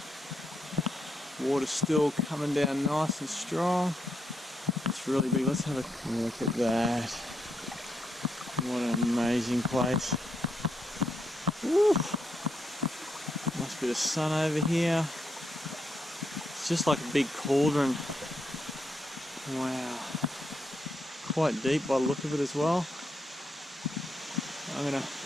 Water's still coming down nice and strong. It's really big. Let's have a look at that. What an amazing place. Woo. Must be the sun over here. It's just like a big cauldron. Wow. Quite deep by the look of it as well. I'm going to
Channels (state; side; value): normal; both; correlation 0.79